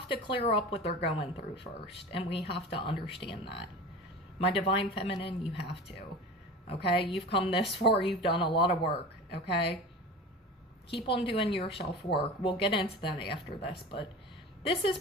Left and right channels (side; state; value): both; normal; correlation 0.34